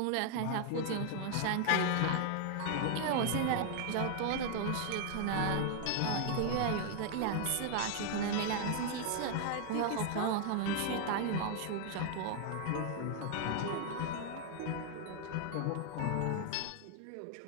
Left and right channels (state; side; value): different; both; correlation 0.00